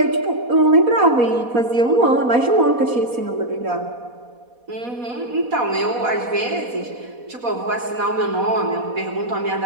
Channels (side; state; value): left; late; 4.1 ms